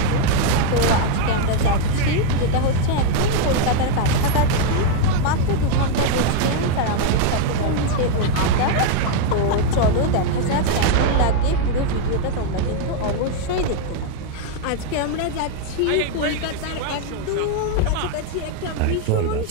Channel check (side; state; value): both; different; correlation 0.00